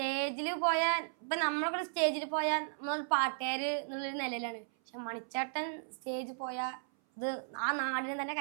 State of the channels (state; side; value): silent; left; 54 dB below the other